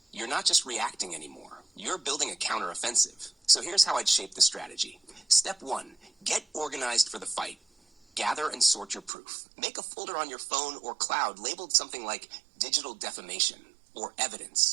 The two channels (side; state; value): left; drops out; at 9.1 s